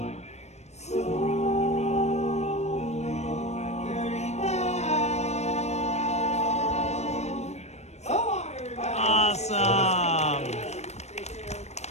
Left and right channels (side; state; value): right; late; 0.32 ms